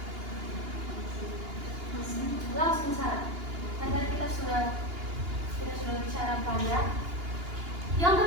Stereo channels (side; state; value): left; late; 2.8 ms